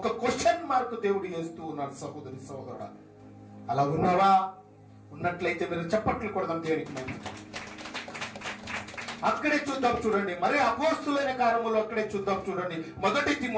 క్వశ్చన్ మార్క్ దేవుడు వేస్తూ ఉన్నాడు. సహోదరి సహోదరుడా, అలా ఉన్నావా? ఉన్నట్లయితే మీరు చప్పట్లు కొడదాం దేవునికి. మేము అక్కడే చూద్దాం చూడండి. మరి అపోస్తులైన కార్యములు అక్కడే చూద్దాం చూడండి. 1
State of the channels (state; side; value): identical; both; correlation 1.00